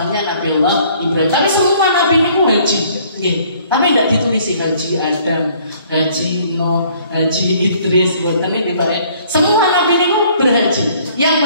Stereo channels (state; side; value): inverted; both; correlation -0.59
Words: Nabiullah Ibrahim. Tapi semua nabi itu haji, tapi tidak ditulis haji Adam, haji Nuh, haji Idris, ini baik. Semua nabi itu berhaji.